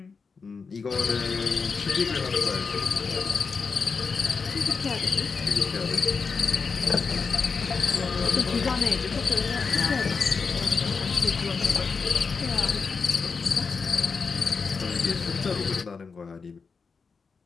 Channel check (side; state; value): right; quieter; 5.0 dB